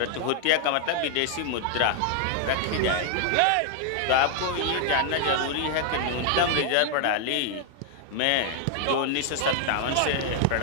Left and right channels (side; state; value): both; different; correlation 0.00